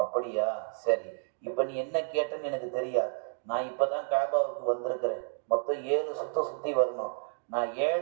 அப்படியா, சரி, இப்ப நீ என்ன கேட்டன்னு எனக்கு தெரியாது. நான் இப்பதான் காபாவுக்கு வந்திருக்கிறேன். மொத்தம் 7 சுத்தி வரணும். நான்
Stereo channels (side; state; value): left; silent; digital silence